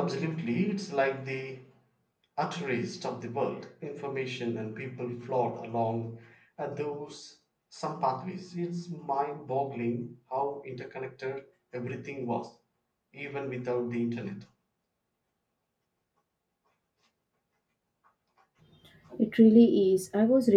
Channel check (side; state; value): both; identical; correlation 1.00